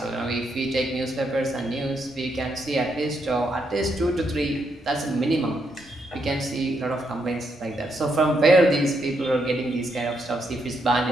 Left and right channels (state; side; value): normal; both; correlation 0.78